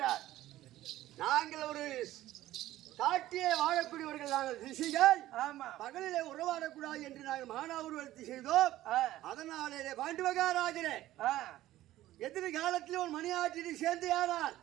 நாங்கள் ஒரு காட்டிலே வாழக்கூடியவர்கள் நாங்கள் ரிஷிகள். ஆமா, பகலிலே உறவாடக்கூடாது என்று நாங்கள் மானாவுருவத்தை செய்தோம். அதனாலே பாண்டு மகாராஜனே எதிர்காலத்தில் ஒரு மணியாற்றில் சேர்ந்து யாரால்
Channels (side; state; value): left; quieter; 14.9 dB